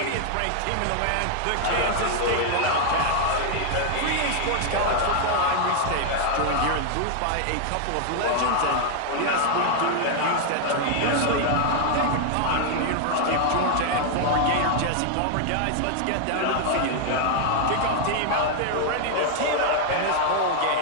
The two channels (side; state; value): both; different; correlation 0.00